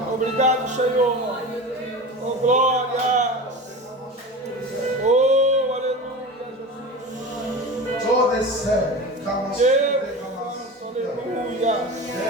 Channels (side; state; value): both; normal; correlation 0.30